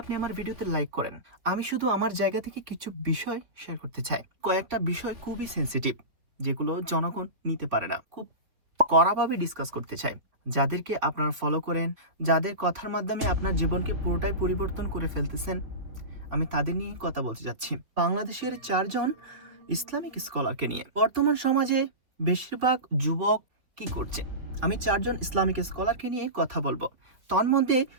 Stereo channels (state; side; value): late; left; 3.2 ms